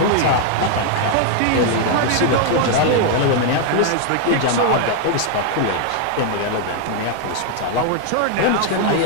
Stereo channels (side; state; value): both; different; correlation 0.00